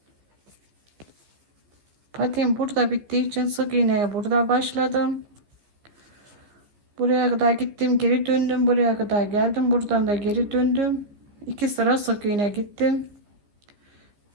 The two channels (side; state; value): left; late; 14 ms